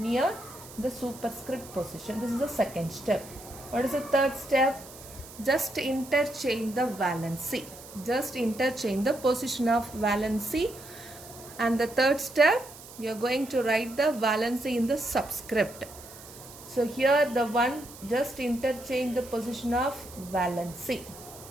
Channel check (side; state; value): right; noise; hiss, 17 dB below the sound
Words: the superscript position. This is the second step. What is the third step? Just interchange the valency. Just interchange the position of valency. And the third step, you are going to write the valency in the subscript. So here the one, just interchange the position of valency.